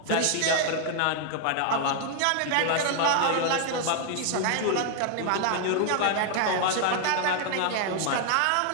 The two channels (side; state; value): both; different; correlation 0.00